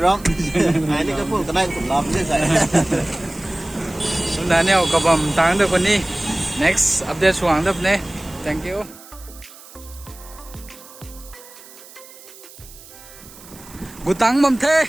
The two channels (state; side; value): noise; right; hiss, 20 dB below the sound